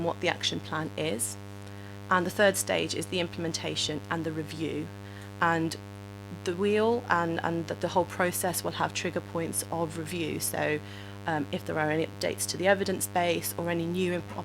what the action plan is. And the third stage is the implementation and the review. And the wheel and the whole process will have trigger points of review. So if there are any updates to the evidence base or any new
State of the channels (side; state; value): both; identical; correlation 1.00